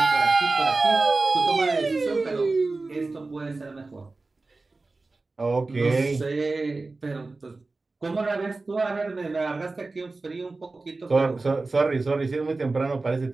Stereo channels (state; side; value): quieter; left; 3.5 dB